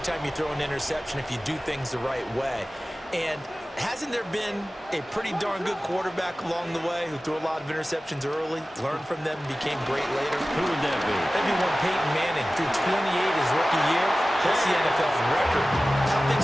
you throw an interception if you do things the right way. And hasn't there been a pretty darn good quarterback along the way who threw a lot of interceptions early, learned from them, became great later? Who would that be? Maybe one Peyton Manning threw 28 his rookie year. That's the NFL record. How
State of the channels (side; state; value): both; normal; correlation 0.96